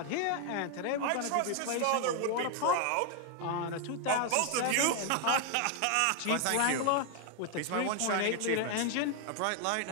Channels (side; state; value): both; different; correlation 0.00